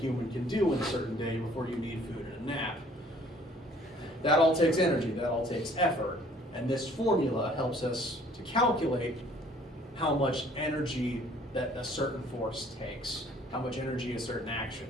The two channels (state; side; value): normal; both; correlation 0.57